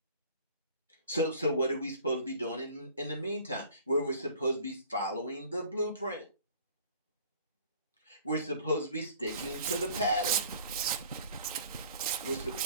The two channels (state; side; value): inverted; both; correlation -0.50